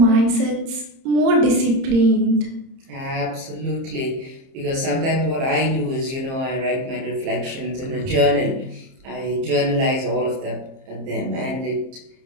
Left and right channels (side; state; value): left; late; 30 ms